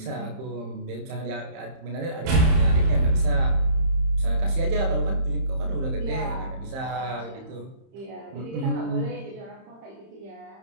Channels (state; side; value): late; left; 30 ms